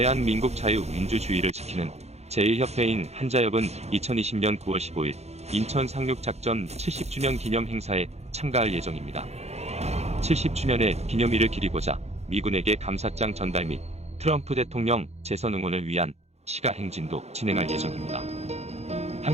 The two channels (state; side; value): late; left; 0.31 ms